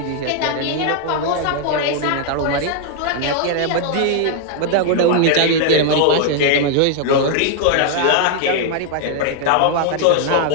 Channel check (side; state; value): both; different; correlation 0.00